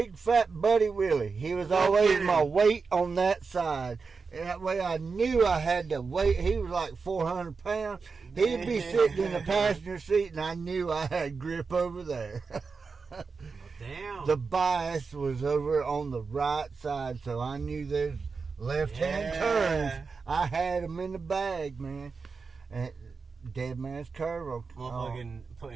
fat buddy Willie. He was always my weight on that side. And that way I knew I had to wait. He was like 400 pounds. He'd be sitting in the passenger seat, and I knew I had grip over there. Damn. The bias was over on the right side, so I knew there's left-hand turns. I had them in the bag, man. And dead man's curve. Motherfucking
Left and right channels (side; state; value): left; quieter; 4.8 dB